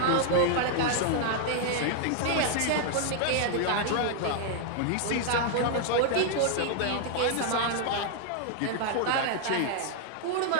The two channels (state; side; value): different; both; correlation 0.00